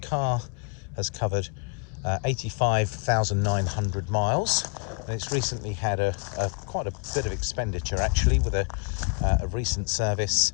car has covered 85,900 miles, and it's recently had quite a bit of expenditure actually with a recent service.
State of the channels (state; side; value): quieter; right; 36.7 dB